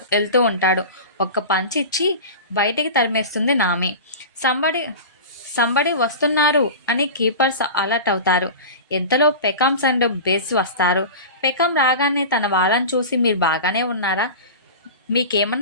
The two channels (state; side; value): inverted; both; correlation -0.30